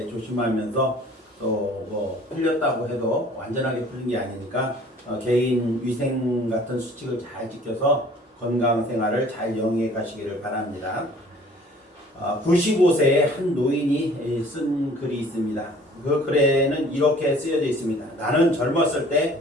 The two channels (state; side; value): normal; both; correlation 0.52